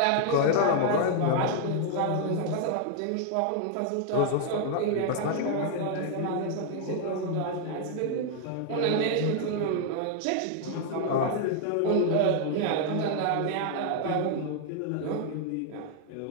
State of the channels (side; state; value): both; different; correlation 0.00